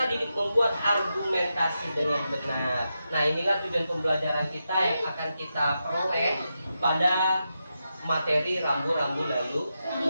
didik membuat argumentasi dengan benar. Nah, inilah tujuan pembelajaran kita yang akan kita peroleh pada materi rambu-rambu lalu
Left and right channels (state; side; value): inverted; both; correlation -0.87